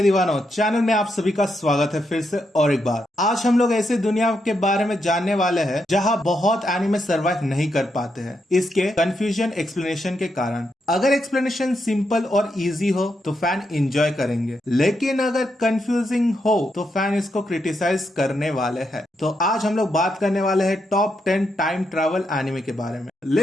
दीवानों, channel में आप सभी का स्वागत है फिर से और एक बार। आज हम लोग ऐसे दुनिया के बारे में जानने वाले हैं जहां बहुत एनिमे सरवाइव नहीं कर पाते हैं, इसके कंफ्यूजन एक्सप्लेनेशन के कारण। अगर एक्सप्लेनेशन सिंपल और इजी हो तो फैन एंजॉय करेंगे, लेकिन अगर कंफ्यूजिंग हो तो फैन इसको क्रिटिसाइज करने वाले हैं। तो आज हम लोग बात करने वाले हैं टॉप 10 टाइम ट्रैवल एनिमे के बारे में।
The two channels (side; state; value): both; normal; correlation 0.82